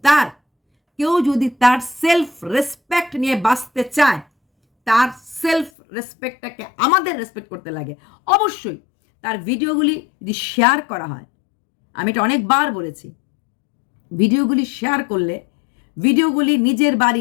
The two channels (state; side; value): drops out; right; at 5.7 s